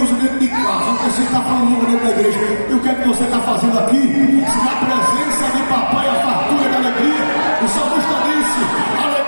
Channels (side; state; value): both; inverted; correlation -1.00